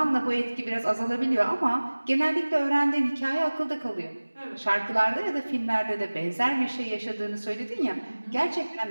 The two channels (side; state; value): both; inverted; correlation -1.00